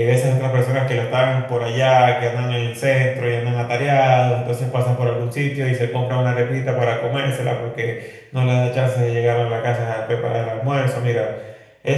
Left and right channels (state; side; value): identical; both; correlation 1.00